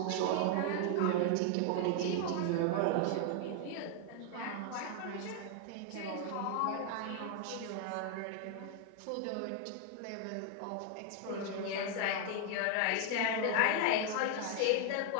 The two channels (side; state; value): both; different; correlation 0.00